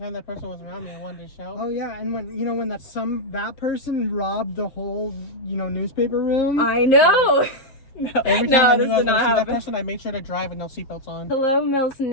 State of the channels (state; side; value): late; right; 7.7 ms